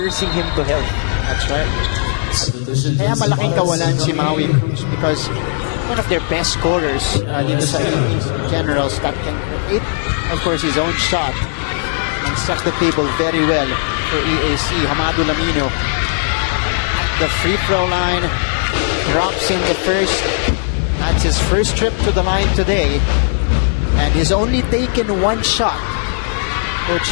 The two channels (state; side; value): silent; right; 68 dB below the other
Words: him to health. That's right. Kaya malaking kawalan si Maui Cruz because one of their best scorers dito sa EAC Generals that can create, of course, his own shot and set the table very well for EAC. Hamado Lamino at the free throw line, drops in the first. That's his first trip to the line today, and he's only taken 1 shot. Coach